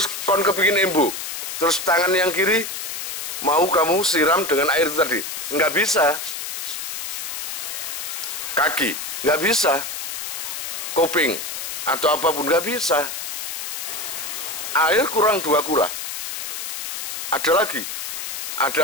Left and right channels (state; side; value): noise; left; hiss, 5 dB below the sound